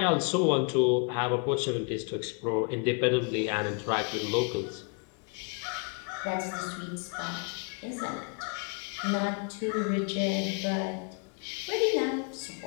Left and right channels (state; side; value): quieter; right; 36.1 dB